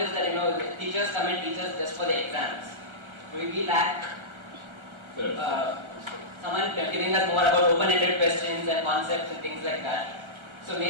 that the teachers come and teach us just for the exams. We lack someone giving us more about open-ended questions and concepts and things like that. So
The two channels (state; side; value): late; left; 1.3 ms